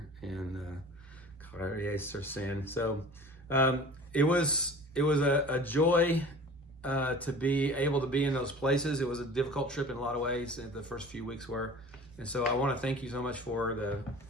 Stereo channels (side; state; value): both; normal; correlation 0.42